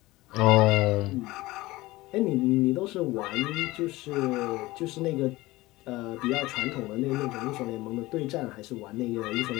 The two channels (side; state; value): right; quieter; 19.3 dB